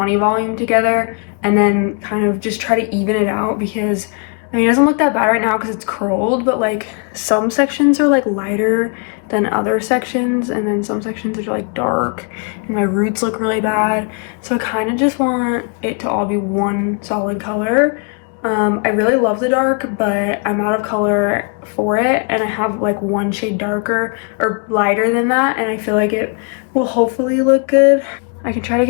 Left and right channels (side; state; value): right; quieter; 37.4 dB